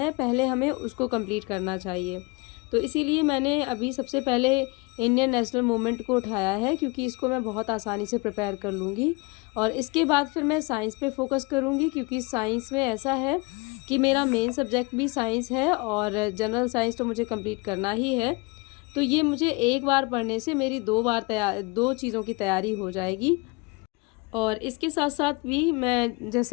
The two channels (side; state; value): right; quieter; 27.6 dB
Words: पहले हमें उसको कंप्लीट करना चाहिए। तो इसीलिए मैंने अभी सबसे पहले इंडियन नेशनल मूवमेंट को उठाया है, क्योंकि इसको मैं बहुत आसानी से प्रिपेयर कर लूँगी, और इसके बाद फिर मैं साइंस पे फोकस करूँगी, क्योंकि साइंस में ऐसा है कि मेरा मेन सब्जेक्ट भी साइंस है और जनरल साइंस तो मुझे कंप्लीट करना ही है। तो ये मुझे एक बार पढ़ने से मेरी 2 बार 2 चीज़ों की तैयारी हो जाएगी। और इसके साथ-साथ भी मैं